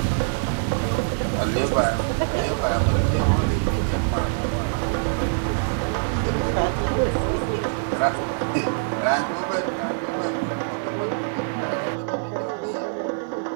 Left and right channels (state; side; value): silent; left; 63 dB below the other